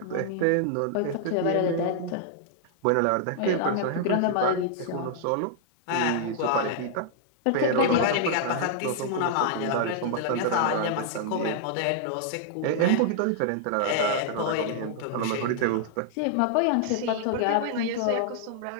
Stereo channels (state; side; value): different; both; correlation -0.01